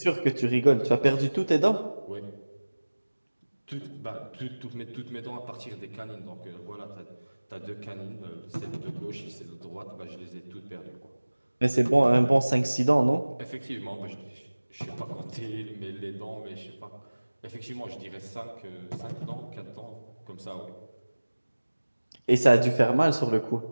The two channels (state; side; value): inverted; both; correlation -1.00